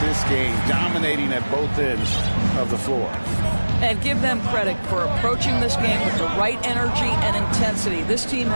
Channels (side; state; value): both; inverted; correlation -1.00